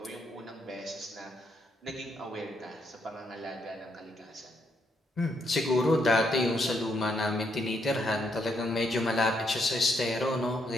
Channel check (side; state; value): both; normal; correlation 0.76